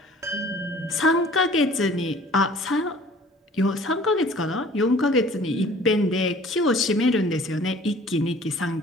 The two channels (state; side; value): normal; both; correlation 0.50